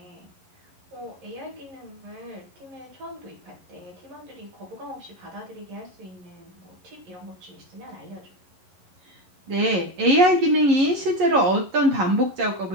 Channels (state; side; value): late; left; 11 ms